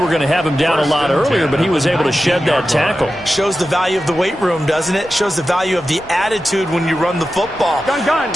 going to have him down a lot earlier, but he was able to shed that tackle. Shows the value of the weight room, doesn't it? Shows the value of the attitude when you run the football. Gun.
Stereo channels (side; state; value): left; noise; rumble, 24 dB below the sound